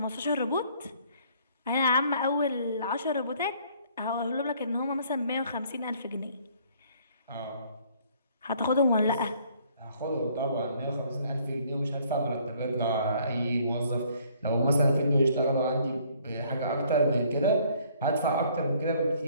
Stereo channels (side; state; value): both; inverted; correlation -0.61